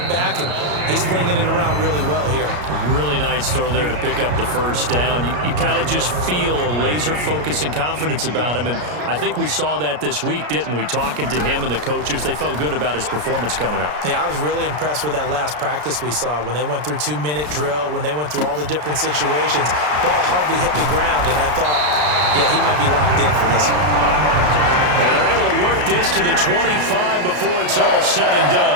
back, and he's flinging it around really well here. A really nice throw there to pick up the first down. You kind of just feel a laser focus and confidence about him, and I think we saw that this week, didn't we? Talking to him and the coaches, they felt good about his performance coming up. Yeah, I was really impressed with that last practice we saw when they went through 2-minute drill, when they went through all the different situations. Ball hardly hit the ground, and I thought, yeah, he might be locked in for this one. And they're able to work this to the 25 before it's all said and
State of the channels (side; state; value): left; late; 33 ms